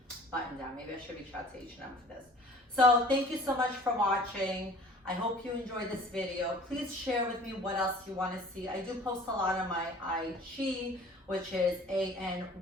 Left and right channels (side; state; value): both; normal; correlation 0.48